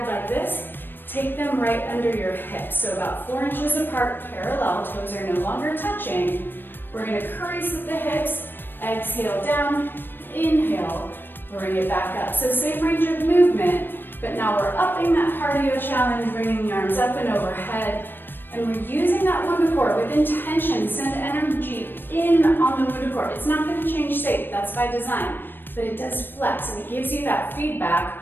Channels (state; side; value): late; right; 0.096 ms